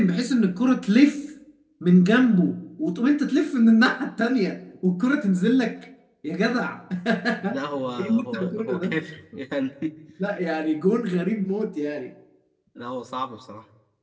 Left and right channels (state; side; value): identical; both; correlation 1.00